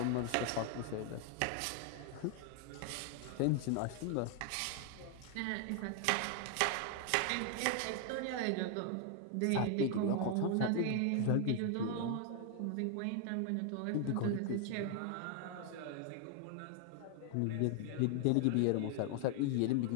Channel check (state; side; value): different; both; correlation 0.00